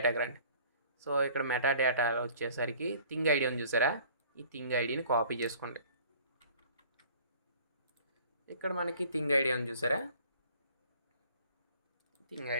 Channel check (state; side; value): inverted; both; correlation -0.51